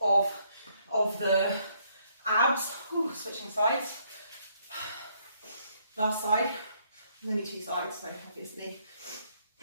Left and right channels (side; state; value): both; inverted; correlation -0.69